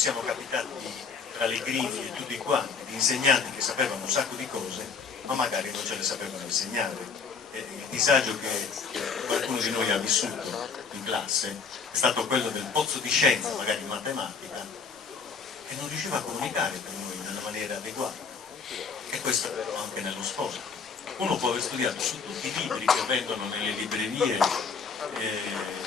capitati tra le griglie tutti quanti, di insegnanti che sapevano un sacco di cose, ma magari non ce le sapevano insegnare. E il disagio che qualcuno di noi ha vissuto in classe è stato quello del pozzo di scienza, magari in matematica, che non riusciva a comunicare per noi nella maniera adeguata. E questo anche nello sport. Uno può aver studiato su tutti i libri che vendono nelle librerie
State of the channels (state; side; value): quieter; right; 5.3 dB